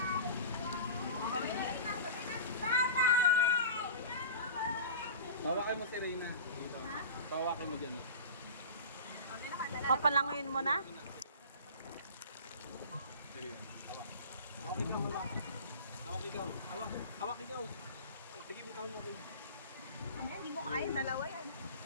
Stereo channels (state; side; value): inverted; both; correlation -0.35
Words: Tawakin mo si Reyna. Dito. Tawakin mo dyan. Papalanguin mo na? Sige. Hawak. Hawak ikaw, hawak. Hawak ikaw. Hawak. Hawak ikaw. Sige, ikaw mo. Hindi mo kaya, dalawa yan.